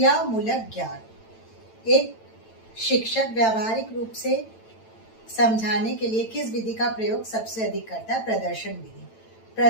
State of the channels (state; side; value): late; right; 9.0 ms